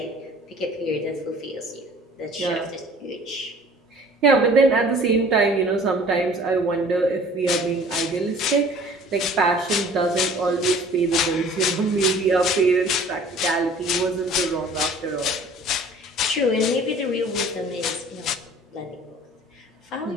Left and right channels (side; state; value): both; normal; correlation 0.49